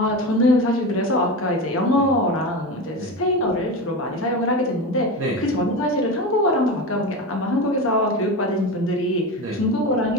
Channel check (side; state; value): both; normal; correlation 0.23